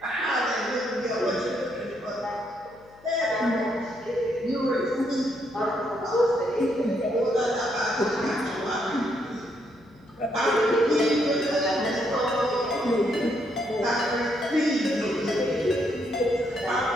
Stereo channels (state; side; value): noise; left; hum, 27 dB below the sound